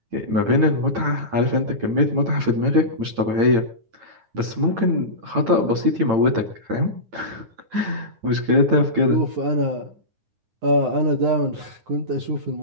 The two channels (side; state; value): left; late; 8.9 ms